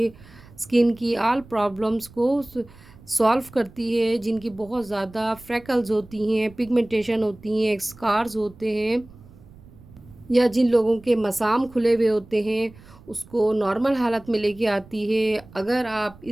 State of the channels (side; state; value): right; noise; rumble, 22 dB below the sound